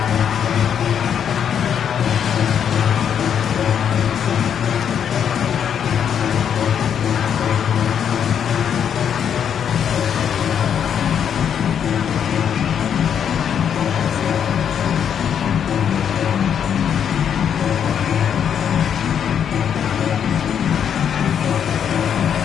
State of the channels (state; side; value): quieter; right; 8.4 dB